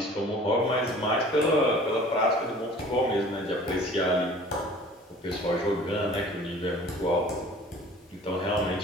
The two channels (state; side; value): normal; both; correlation 0.47